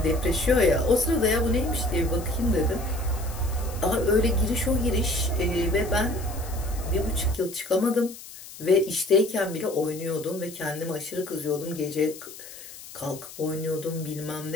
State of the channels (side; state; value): left; noise; hiss, 15 dB below the sound